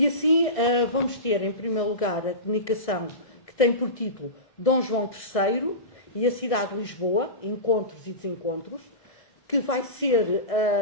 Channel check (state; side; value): late; right; 1.6 ms